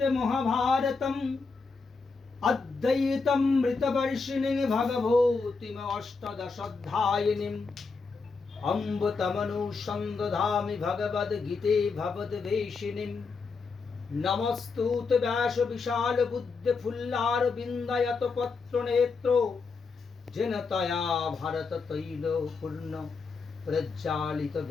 महाभारतम् अद्वैतमृतवर्षिणीं भगवतीम् अष्टादशाध्यायिनीम् अम्ब तमनुसन्दधामि भगवद्गीते भवद्वेषिणीम् नमस्तुत व्यास विशाल बुद्ध फुल्लारविन्दयत पत्रनेत्रो जेन तया भारत तैल पूर्ण प्रज्वालित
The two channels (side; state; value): right; quieter; 4.5 dB